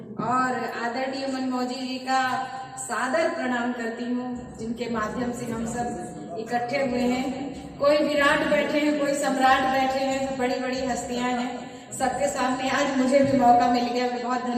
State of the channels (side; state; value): both; identical; correlation 1.00